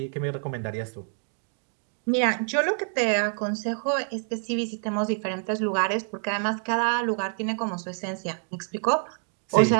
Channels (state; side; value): silent; left; 55 dB below the other